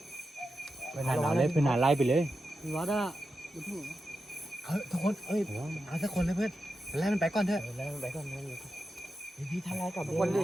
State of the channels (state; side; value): normal; both; correlation 0.89